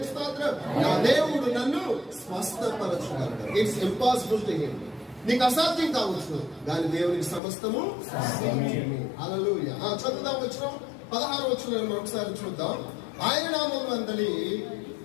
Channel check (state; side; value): drops out; right; at 7.4 s